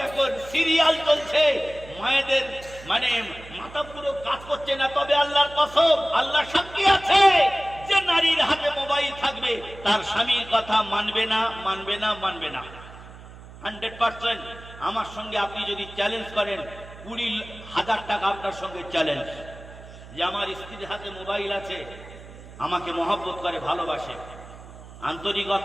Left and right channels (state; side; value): noise; right; hum, 17 dB below the sound